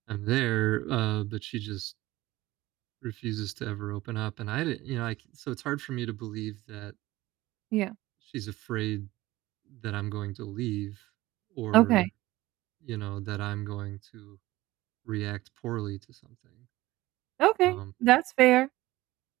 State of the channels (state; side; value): quieter; left; 18.1 dB